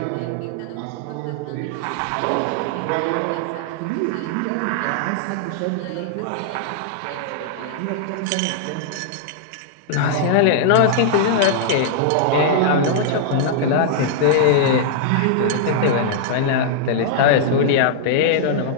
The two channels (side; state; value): both; different; correlation -0.01